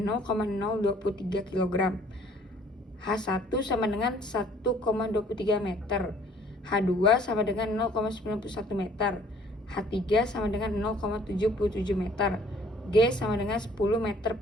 0,023 kg. H1 sama dengan 1,23 meter. H2 sama dengan 0,91 meter. H3 sama dengan 0,77 meter. G sama dengan 10 meter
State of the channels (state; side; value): normal; both; correlation 0.57